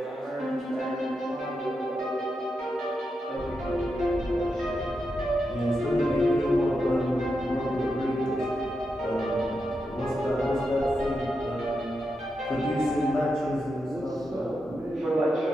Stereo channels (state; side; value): normal; both; correlation 0.86